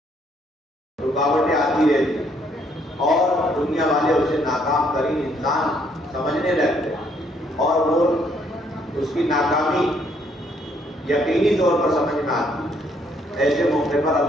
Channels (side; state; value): both; normal; correlation 0.68